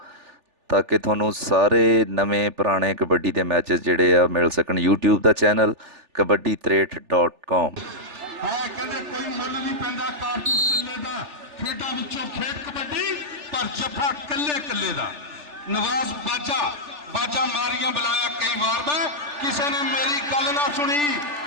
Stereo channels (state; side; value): late; left; 3.4 ms